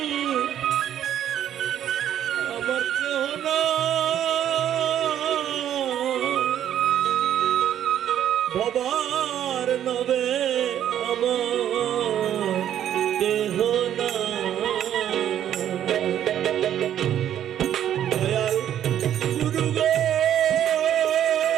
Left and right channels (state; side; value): quieter; left; 10.6 dB